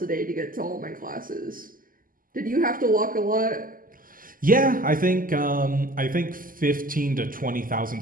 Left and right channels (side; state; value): left; late; 0.41 ms